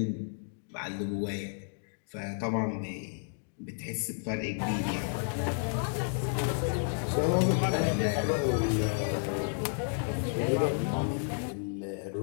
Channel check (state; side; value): silent; right; 57 dB below the other